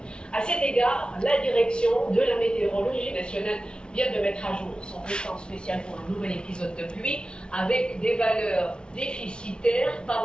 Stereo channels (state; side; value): late; right; 0.055 ms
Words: À cet égard, la direction de la météorologie nationale vient de mettre à jour son bulletin spécial pour un nouvel épisode de pluie avec des valeurs déficitaires